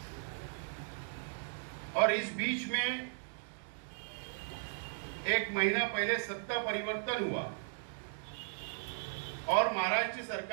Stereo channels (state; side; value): silent; left; digital silence